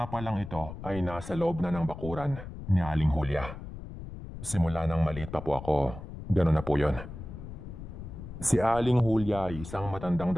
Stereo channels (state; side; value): noise; left; rumble, 11 dB below the sound